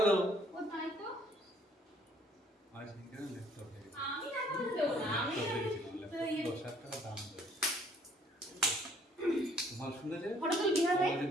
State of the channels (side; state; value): both; normal; correlation 0.61